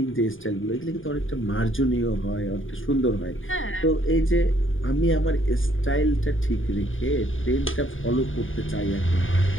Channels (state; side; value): late; right; 0.58 ms